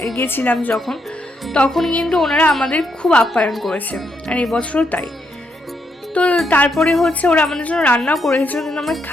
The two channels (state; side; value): normal; both; correlation 0.78